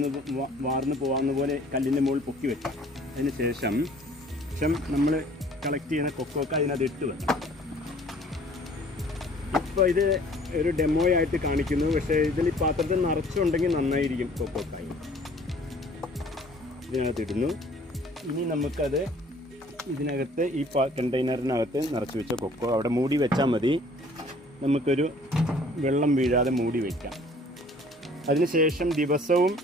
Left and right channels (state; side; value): normal; both; correlation 0.54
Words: വാർന്ന് പോകാവുന്ന പോലെ കല്ലിൻ്റെ മുകളിൽ പൊക്കി വെക്കാം. അതിന് ശേഷം നമ്മൾ കളക്ട് ചെയ്യുന്ന കൊക്കോക്ക അതിനകത്ത് ഇട്ട് വെക്കാം. ഇപ്പോൾ ഇത് ഒരു ഡെമോ ആയിട്ട് കാണിക്കുന്നു, പക്ഷേ ഇതിൽ ഈ പാത്രത്തിൽ നിറച്ചുണ്ടെങ്കിൽ നന്നായിരിക്കും. കൊക്കോക്കായി ഇതിനകത്ത് ഇടുന്നു. ഇനി നമുക്കത് ഇതിനകത്ത് ഈ കണ്ടെയ്നറിനകത്ത് നിറച്ച് വെച്ച കൊക്കോ അവിടെ മൂടി വെച്ചാൽ മതി. നമുക്കൊരു വെള്ളം വീഴാതെ മൂടി വയ്ക്കാം. അതിനുശേഷം ദിവസവും